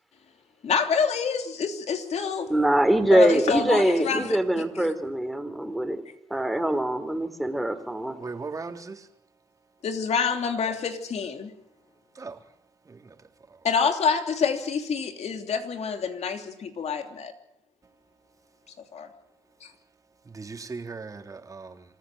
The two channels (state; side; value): normal; both; correlation 0.68